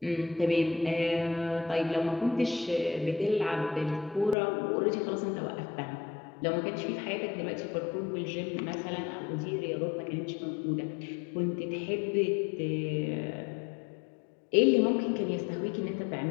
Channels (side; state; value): right; drops out; at 4.4 s